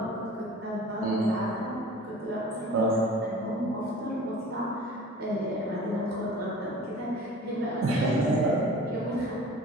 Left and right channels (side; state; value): both; normal; correlation 0.43